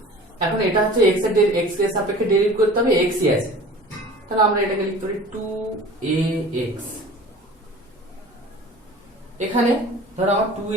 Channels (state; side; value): normal; both; correlation 0.42